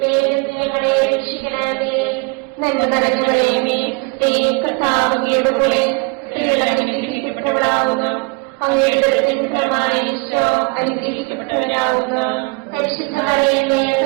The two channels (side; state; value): left; quieter; 29.6 dB